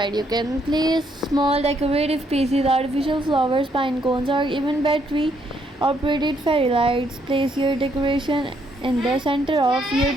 you can place small decorative pieces, artificial flowers, pine cones, or even battery operated fairy lights. Place your decoration in the center of your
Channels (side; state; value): both; normal; correlation 0.72